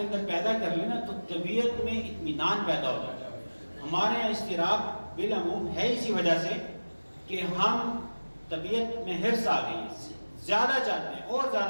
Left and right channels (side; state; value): both; inverted; correlation -1.00